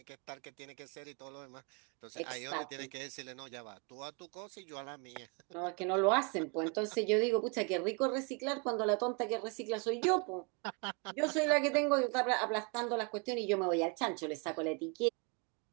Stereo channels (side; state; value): left; quieter; 33.9 dB